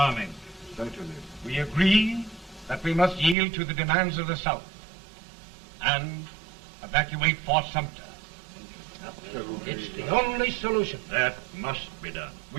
Certainly. We agree that we must yield to the demands of the South and evacuate Fort Sumter. It's the only solution. That must be done.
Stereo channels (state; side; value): drops out; left; at 3.4 s